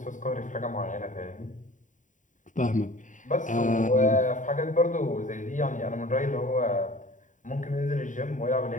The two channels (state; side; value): late; right; 0.37 ms